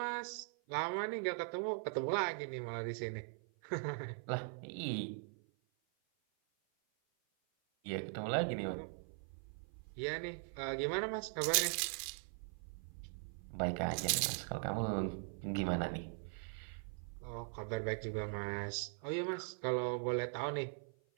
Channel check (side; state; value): left; silent; 50 dB below the other